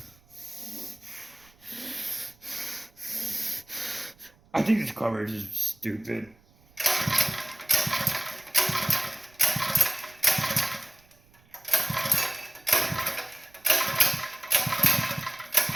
I think this coverage is stupid.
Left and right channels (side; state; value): right; noise; rumble, 30 dB below the sound